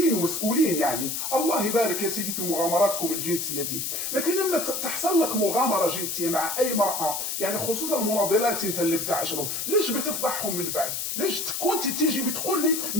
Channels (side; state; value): left; noise; hiss, 3 dB below the sound